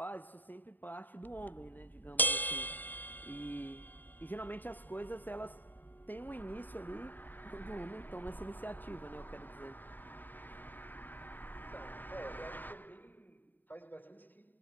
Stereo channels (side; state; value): right; late; 0.089 ms